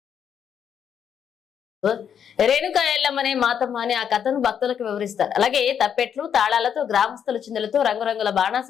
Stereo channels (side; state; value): right; quieter; 8.2 dB